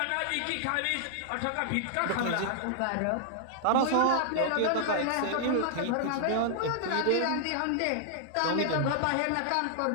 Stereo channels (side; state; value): both; different; correlation -0.01